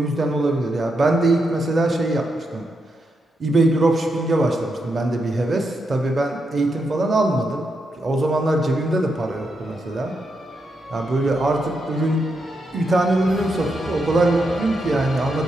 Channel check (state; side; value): normal; both; correlation 0.83